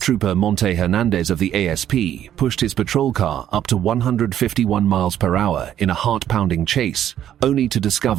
Monte Hernandez of the ASP pushed his patrol car up to 151 miles per hour in a heart-pounding chase, only to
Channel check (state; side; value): quieter; left; 10.9 dB